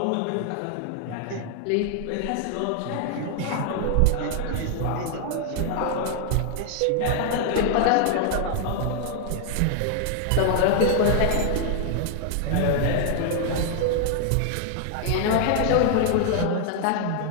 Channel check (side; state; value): both; different; correlation 0.00